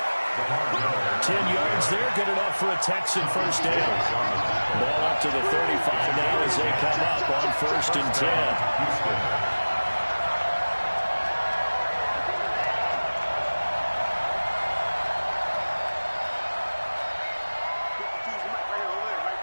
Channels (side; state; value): both; inverted; correlation -1.00